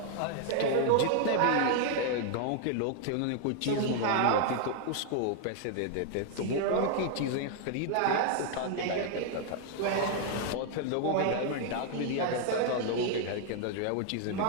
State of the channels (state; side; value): different; both; correlation 0.00